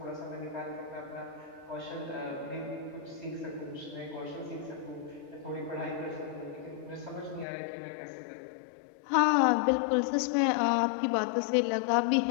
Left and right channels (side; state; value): right; drops out; at 7.5 s